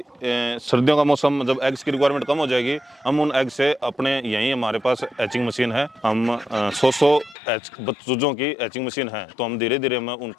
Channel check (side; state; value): right; drops out; at 7.4 s